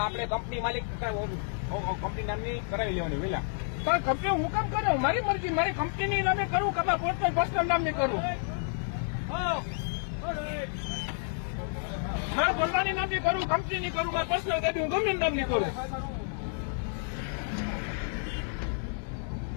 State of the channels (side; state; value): right; silent; digital silence